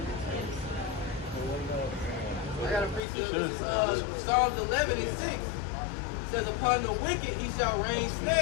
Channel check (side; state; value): right; drops out; at 3.0 s